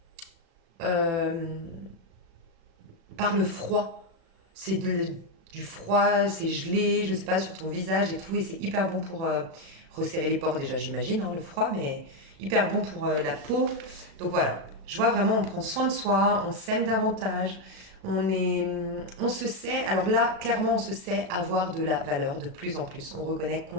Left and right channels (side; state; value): left; late; 36 ms